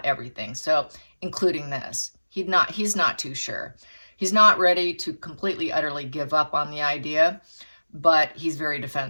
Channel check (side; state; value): both; inverted; correlation -1.00